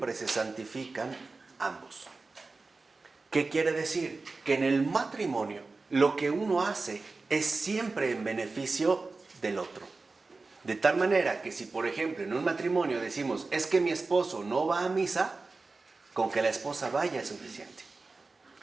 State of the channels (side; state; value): left; quieter; 3.8 dB